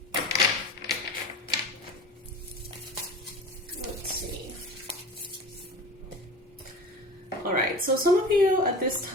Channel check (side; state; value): both; normal; correlation 0.35